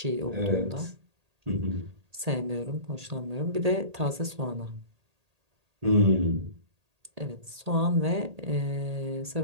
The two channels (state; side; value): late; left; 1.8 ms